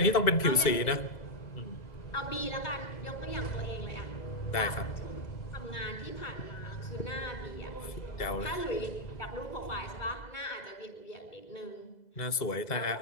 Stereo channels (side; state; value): right; late; 2.0 ms